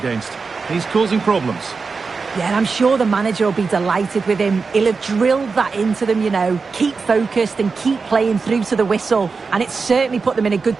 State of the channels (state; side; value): quieter; left; 4.7 dB